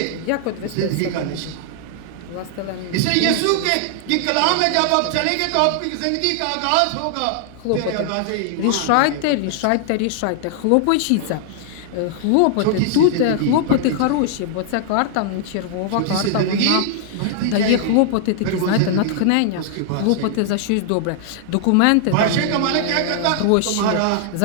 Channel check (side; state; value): both; different; correlation -0.01